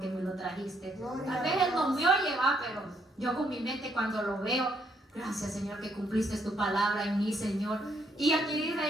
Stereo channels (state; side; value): normal; both; correlation 0.72